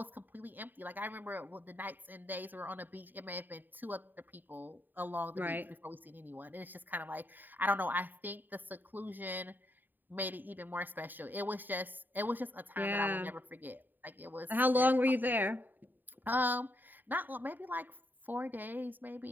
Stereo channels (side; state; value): left; late; 0.090 ms